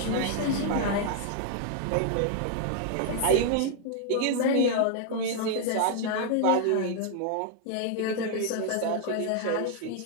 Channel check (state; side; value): different; both; correlation 0.00